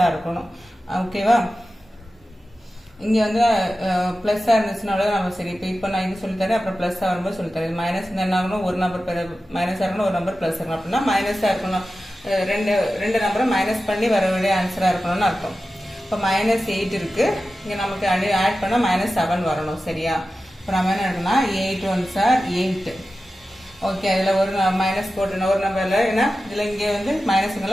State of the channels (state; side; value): normal; both; correlation 0.94